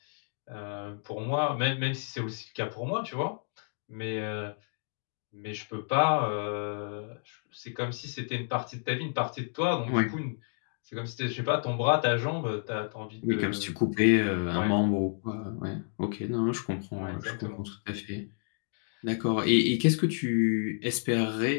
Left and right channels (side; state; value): right; silent; digital silence